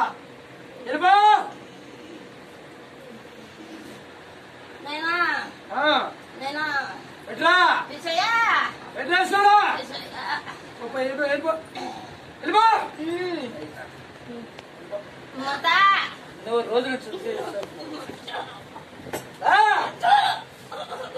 వెళ్ళిపో. ఎట్లా ఎట్లేస్తాడా? వెళ్ళిపో వెళ్ళిపో వెళ్ళిపో. నువ్వు రోజులు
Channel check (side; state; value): both; identical; correlation 1.00